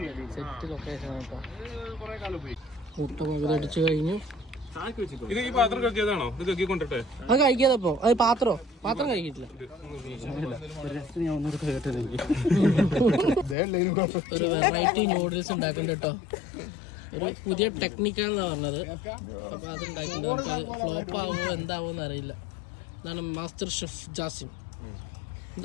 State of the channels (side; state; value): right; drops out; at 13.6 s